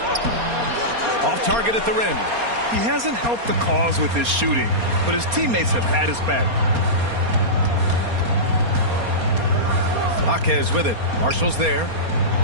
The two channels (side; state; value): left; late; 4.3 ms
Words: Off target at the rim. He hasn't helped the cause with his shooting, but his teammates have had his back. Jaquez with it. Marshall's there.